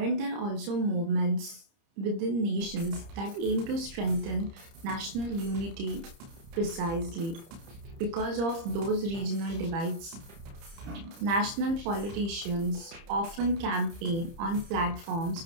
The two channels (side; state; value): left; late; 30 ms